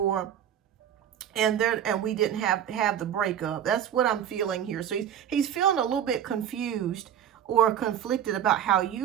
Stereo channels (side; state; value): left; quieter; 9.6 dB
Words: And we didn't have the breakup. That's what I'm feeling here. So he's feeling a little bit confused or conflicted about how